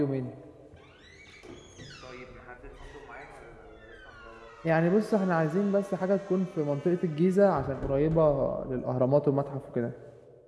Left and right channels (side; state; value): both; identical; correlation 1.00